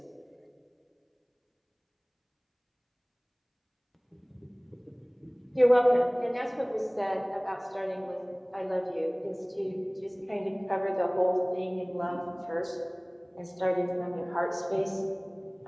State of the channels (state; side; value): identical; both; correlation 1.00